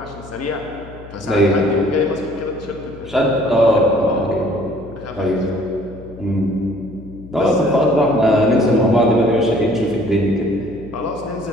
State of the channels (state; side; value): noise; left; hum, 18 dB below the sound